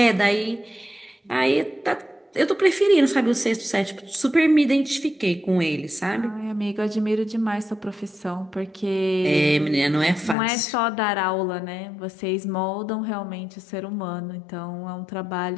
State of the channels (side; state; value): right; drops out; at 10.4 s